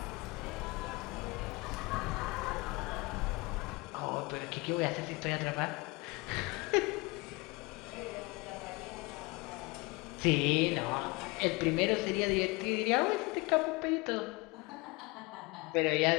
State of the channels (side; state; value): right; quieter; 25.5 dB